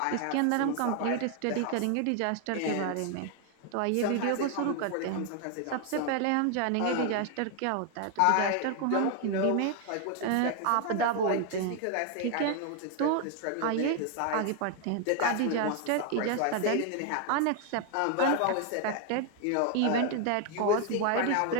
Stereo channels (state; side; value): different; both; correlation 0.01